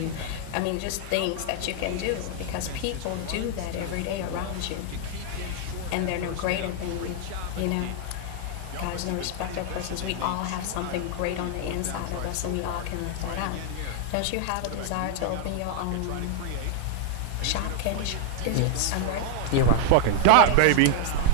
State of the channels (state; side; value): different; both; correlation 0.00